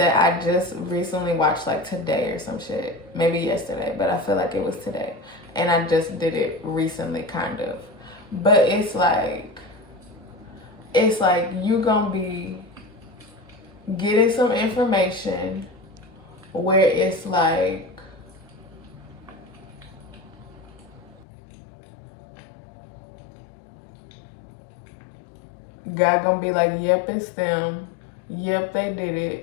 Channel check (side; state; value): right; drops out; at 21.2 s